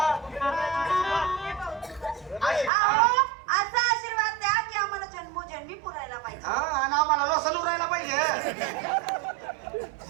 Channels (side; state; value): left; drops out; at 2.7 s